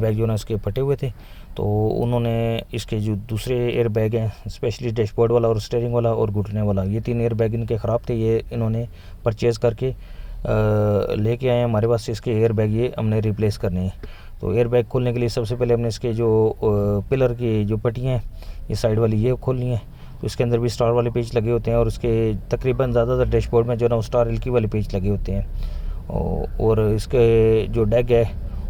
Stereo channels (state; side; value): identical; both; correlation 1.00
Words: जो है ना उसके फटे हुए थे। तो उन्होंने इसके जो दूसरे एयर बैग हैं, स्पेशली डैशबोर्ड वाला और स्टीयरिंग वाला और घुटने वाला, ये 3 एयर बैग इनके ख़राब थे। ये इन्होंने परचेज़ करके लेके आए हैं हमारे पास। इसके एयर बैग ये हमने रिप्लेस करने हैं। तो एयर बैग खोलने के लिए सबसे पहले हमने इसके जो पिलर की जो पट्टियाँ हैं ये साइड वाली ये खोलनी है। तो इसके अंदर भी स्टार वाले पेज लगे होते हैं और उसके तकरीबन ज़्यादातर डैशबोर्ड में जो ना स्टार एलकी वाले पेज लगे होते हैं। और इसके जो डैग है